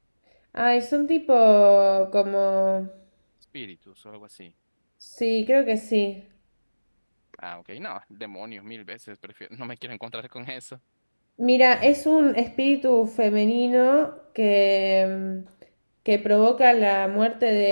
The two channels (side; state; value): both; inverted; correlation -1.00